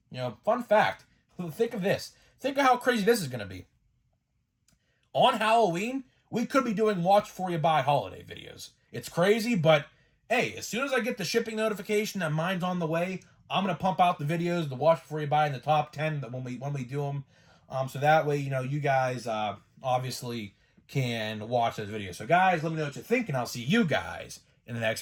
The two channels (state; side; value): identical; both; correlation 1.00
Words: fun fact, think of this. Think of how crazy this is going to be. On Halloween, we could be doing watch before you buy holiday videos. It's crazy, but hey, as soon as I get the shipping notification that mine's on the way, I'm going to pump out the videos, the watch before you buy in the top 10 when we do them. So that way, you guys obviously can watch those videos. So guys, let me know what you think, and I'll see you guys in the next